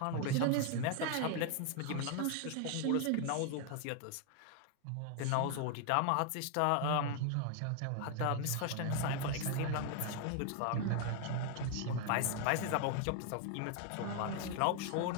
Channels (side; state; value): both; different; correlation 0.00